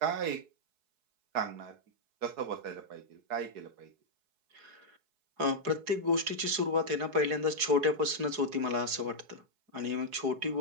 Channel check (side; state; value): left; late; 4.7 ms